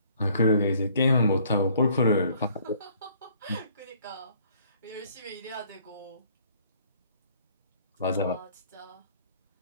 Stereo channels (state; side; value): inverted; both; correlation -0.60